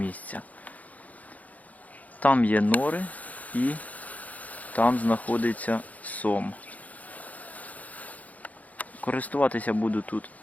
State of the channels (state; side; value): late; right; 0.075 ms